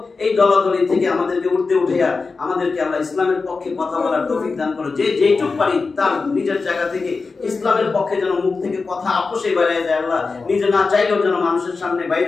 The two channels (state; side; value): quieter; right; 4.3 dB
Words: এই দলাদলি থেকে আমাদেরকে উঠাইয়া আমাদেরকে আল্লাহ ইসলামের পক্ষে কথা বলার তৌফিক দান করো। যে যেইটুক পারি তার নিজের জায়গা থেকে ইসলামের পক্ষে যেন মুখ থেকে কথা আপোষে বাইরে যায়। আল্লাহ নিজে না চাইলেও যেন মানুষের সামনে বাইরে